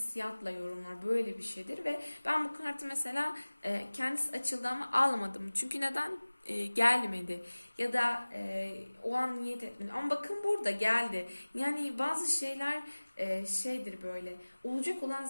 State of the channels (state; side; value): inverted; both; correlation -1.00